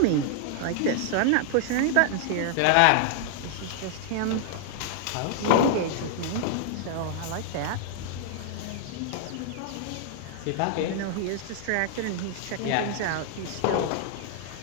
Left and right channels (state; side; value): different; both; correlation -0.01